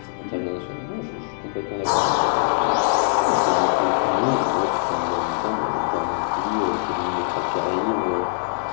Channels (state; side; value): silent; right; digital silence